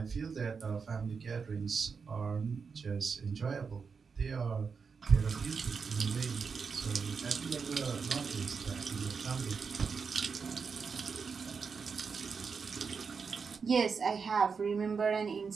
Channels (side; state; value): left; quieter; 5.5 dB